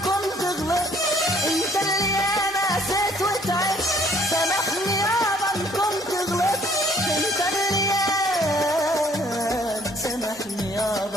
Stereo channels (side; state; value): both; normal; correlation 0.60